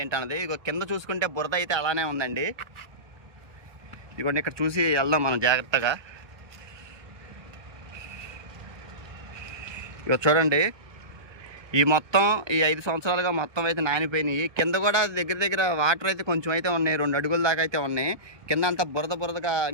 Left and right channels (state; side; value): late; left; 1.2 ms